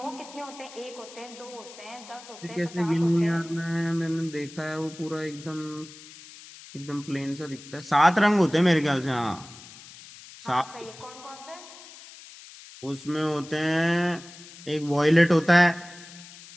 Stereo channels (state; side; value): noise; left; hiss, 18 dB below the sound